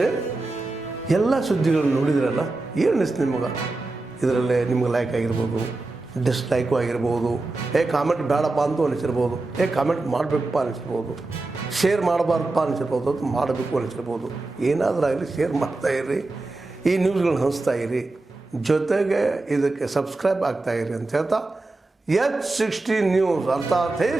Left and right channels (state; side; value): quieter; left; 3.1 dB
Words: ಎಲ್ಲ ಸುದ್ದಿಗಳನ್ನು ನೋಡಿದ್ರಲ್ಲ, ಏನು ಅನಿಸ್ತು ನಿಮಗೆ? ಇದರಲ್ಲೇ ನಿಮ್ಗೆ ಲೈಕ್ ಆಗಿರ್ಬೋದು, ಡಿಸ್ಲೈಕು ಆಗಿರ್ಬೋದು, ಕಾಮೆಂಟ್ ಬೇಡಪ್ಪ ಅಂತೂ ಅನಿಸಿರ್ಬೋದು, ಕಾಮೆಂಟ್ ಮಾಡಬೇಕಪ್ಪ ಅನಿಸಿರ್ಬೋದು, ಶೇರ್ ಮಾಡಬಾರ್ದಪ್ಪ ಅನಿಸಿರ್ಬೋದು, ಅದು ಮಾಡಬೇಕು ಅನಿಸಿರ್ಬೋದು. ಏನಾದರೂ ಆಗಲಿ ಶೇರ್ ಮಾಡ್ತಾಯಿರಿ, ಈ ನ್ಯೂಸ್ಗಳನ್ನ ಹಂಚ್ತಾ ಇರಿ, ಜೊತೆಗೆ ಇದಕ್ಕೆ ಸಬ್ಸ್ಕ್ರೈಬ್ ಆಗ್ತಾಯಿರಿ ಅಂತ ಹೇಳ್ತಾ H16 ನ್ಯೂಸ್ ಅರ್ಥಾತ್ ಹೇ